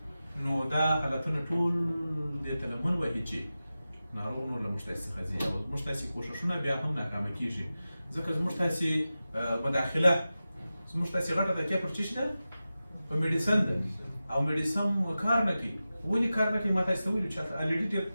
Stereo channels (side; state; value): both; inverted; correlation -0.94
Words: نو دا حالتونه ټول دې ته لمن وهي چې ناروغ نور له موږ تاسې څخه ځي او زموږ تاسې کوششونه بیا هم ناکامه کېږي ځکه زموږ تاسې مداخله زموږ تاسې غټه تکیه پر څه شي ده په میډیسن ده او میډیسن کار نه کوي. ولې کار نه کوي ما تاسې ته ویلو چې الریډي